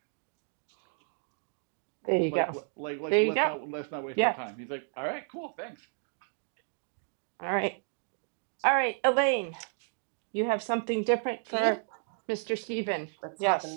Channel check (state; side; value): silent; left; 56 dB below the other